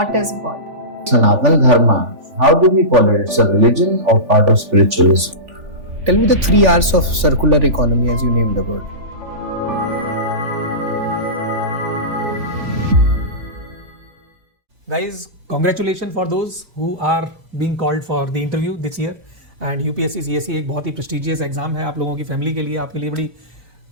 is God? Sanatana Dharma, how do we call it? It's a religion or part of spiritualism? Tell me the 3 R's of circular economy as you named the word. Guys, congratulations for those who are being called for the interview this year. And UPSC CSC एक बहुत ही prestigious exam है आप लोगों की family के लिए, आपके लिए बड़ी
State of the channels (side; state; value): left; late; 3.5 ms